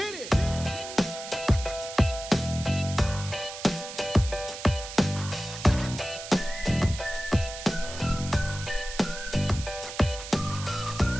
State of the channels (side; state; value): right; noise; hiss, 11 dB below the sound